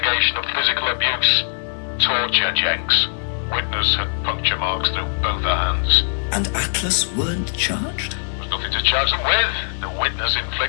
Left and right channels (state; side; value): silent; right; 57 dB below the other